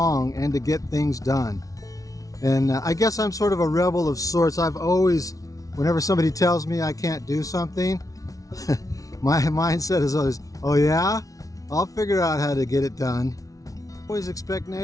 and to get things done. And I guess I'm sort of a rebel of sorts. I've always, whenever somebody tells me I can't do something, my mindset is always, oh yeah? I'll figure out how to get it done. Always expect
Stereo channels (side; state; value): right; late; 0.17 ms